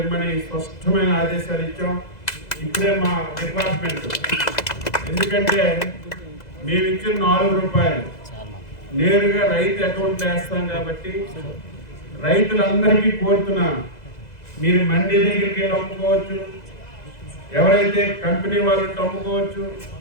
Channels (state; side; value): late; right; 2.0 ms